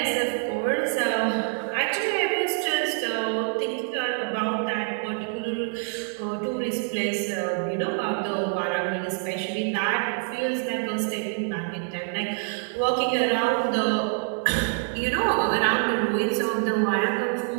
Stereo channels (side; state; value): left; silent; 57 dB below the other